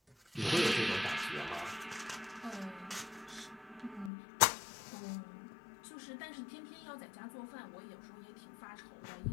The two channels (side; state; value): right; drops out; at 4.1 s